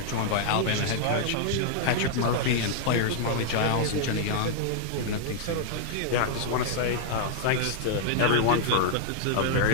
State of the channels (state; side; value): different; both; correlation -0.01